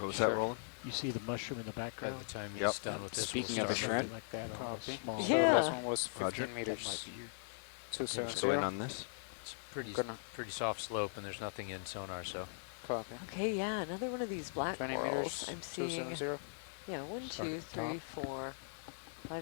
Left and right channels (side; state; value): right; silent; digital silence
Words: was Sure. that rolling? You see the mushroom in the By background? the time Yep. he's done with this, we'll Speaking of start the moving. shrimp, Like that on a Copy. small So Yeah. last one was 15 Roger. That meters. might be your 270. Go in on this. It's pretty Gonna- pretty soft slope, and there's nothing in sonar, so Copy. Okay, yeah, another one of these black 20 corals. meters. I'm seeing, 270. yeah, 1, Start 2, at the top. 3, 4,